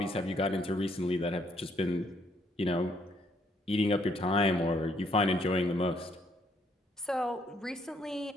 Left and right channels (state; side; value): normal; both; correlation 0.69